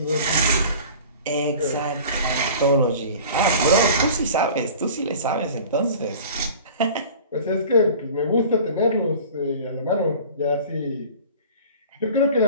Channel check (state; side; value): inverted; both; correlation -0.42